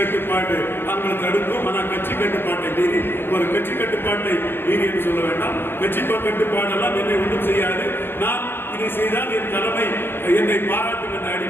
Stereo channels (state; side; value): late; right; 0.10 ms